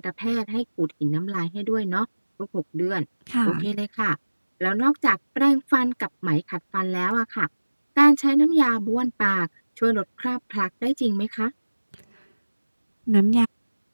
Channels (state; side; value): inverted; both; correlation -1.00